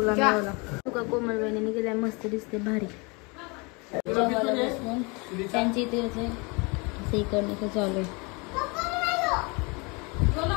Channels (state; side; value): quieter; right; 29.2 dB